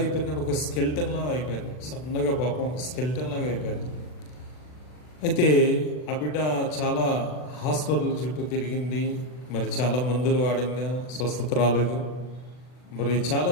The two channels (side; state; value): right; late; 40 ms